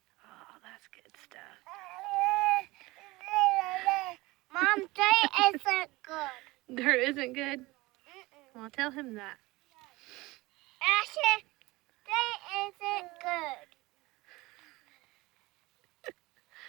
Oh, that's good stuff. Mom, dirt isn't good. Dirt isn't good? Well, tell him that. Asher, dirt isn't good.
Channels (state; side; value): quieter; left; 21.2 dB